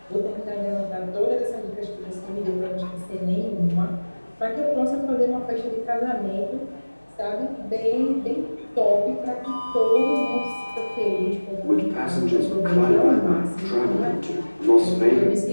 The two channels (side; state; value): both; inverted; correlation -1.00